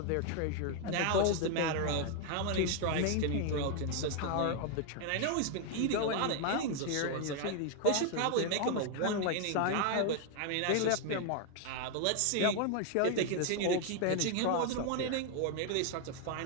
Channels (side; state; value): both; different; correlation 0.00